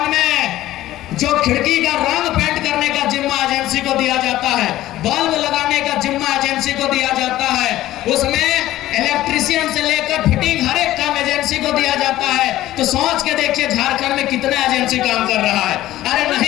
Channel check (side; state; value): right; quieter; 14.9 dB